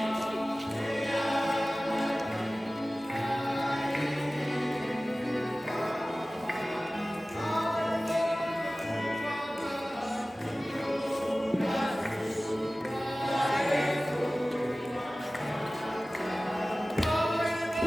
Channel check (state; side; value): normal; both; correlation 0.97